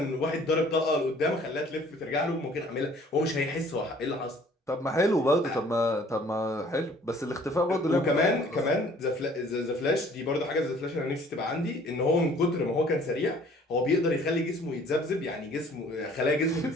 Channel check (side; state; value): both; normal; correlation 0.55